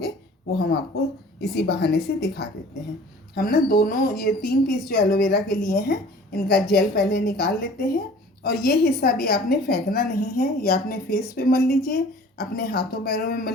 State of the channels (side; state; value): both; normal; correlation 0.47